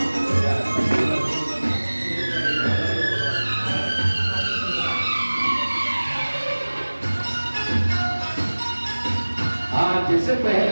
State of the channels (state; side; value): inverted; both; correlation -1.00